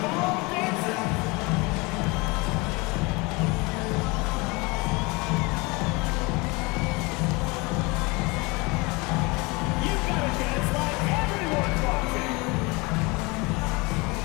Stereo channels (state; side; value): quieter; right; 26.3 dB